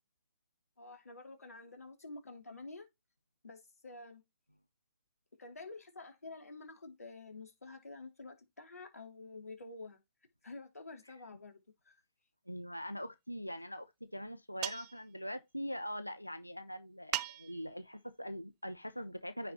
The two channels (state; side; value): inverted; both; correlation -0.69